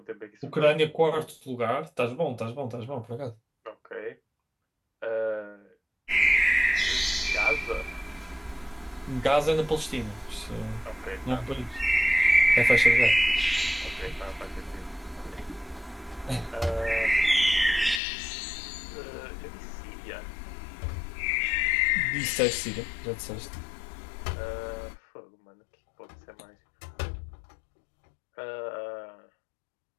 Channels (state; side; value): drops out; right; at 18.0 s